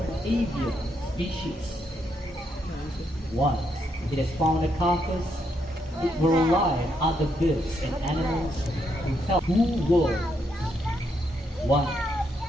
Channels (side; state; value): both; normal; correlation 0.77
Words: avian species. Once it has found a carcass, it will rely on other birds and animals to help two worlds. One